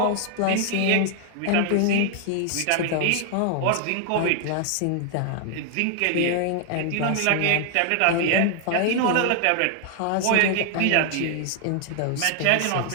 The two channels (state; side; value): different; both; correlation 0.00